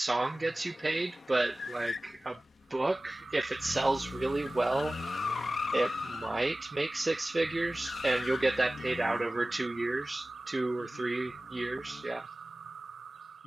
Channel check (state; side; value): normal; both; correlation 0.97